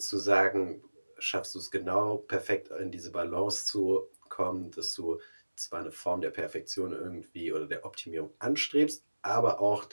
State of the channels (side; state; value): both; inverted; correlation -1.00